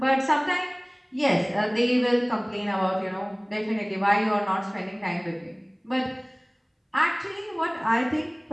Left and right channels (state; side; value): identical; both; correlation 1.00